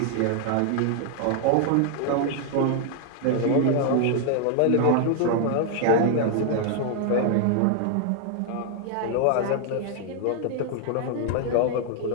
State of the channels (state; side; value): different; both; correlation 0.00